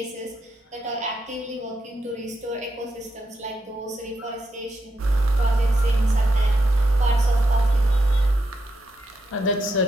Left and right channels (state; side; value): normal; both; correlation 0.82